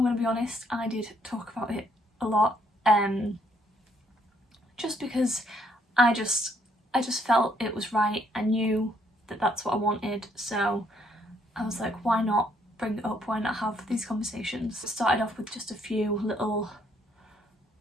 going to be honest, I did talk about it a lot, just because I just felt it was right. I knew that that's what I wanted, so I was like, why not bring it up, why not have these conversations? It started off with just a few little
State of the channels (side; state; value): both; normal; correlation 0.69